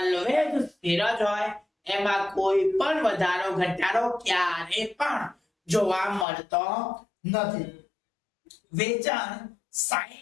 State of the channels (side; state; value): right; drops out; at 6.2 s